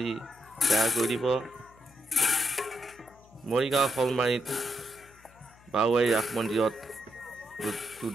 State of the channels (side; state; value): left; noise; hum, 26 dB below the sound